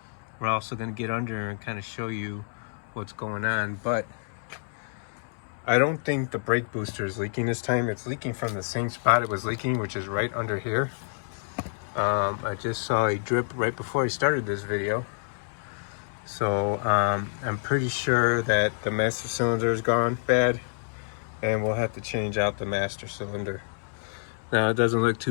We're also going to get under and kind of show you what's going on, but I don't think the brake booster is leaking this time. It's leaking from the same spot it was leaking, which is right under here. I just saw a drip right before I started this video. So I'm pretty sure that the master cylinder is gone bad, and we'll have to change out the master cylinder. Now, it doesn't look too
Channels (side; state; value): right; silent; 59 dB below the other